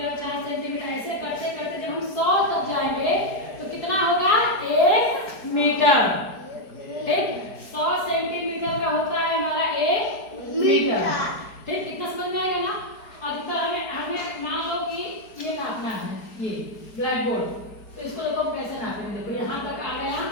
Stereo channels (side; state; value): right; late; 4.7 ms